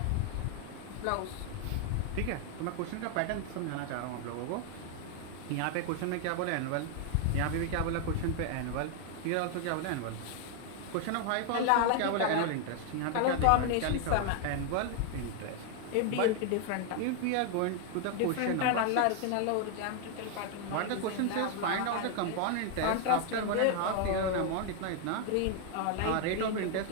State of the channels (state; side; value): different; both; correlation 0.00